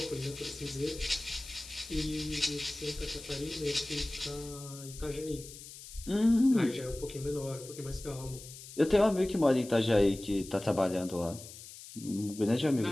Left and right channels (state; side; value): noise; left; hiss, 15 dB below the sound